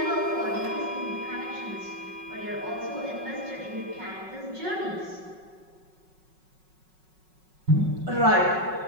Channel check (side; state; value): left; late; 5.4 ms